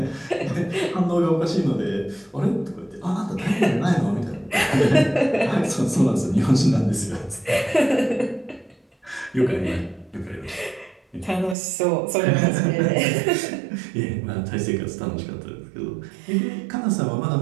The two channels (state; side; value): drops out; left; at 11.6 s